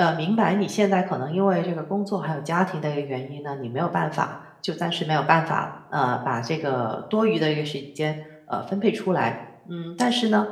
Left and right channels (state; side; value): identical; both; correlation 1.00